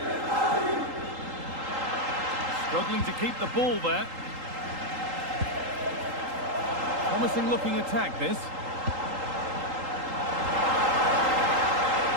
Struggling to keep the ball there. Promising looking attack this.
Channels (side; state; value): left; late; 3.8 ms